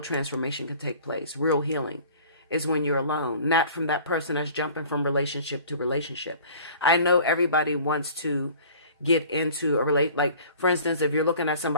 transformation can take place. Real healing is when you're alone, not from that person that's jumping from relationship to relationship. I know everybody wants to get into like, for instance, if you're looking at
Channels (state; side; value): inverted; both; correlation -0.47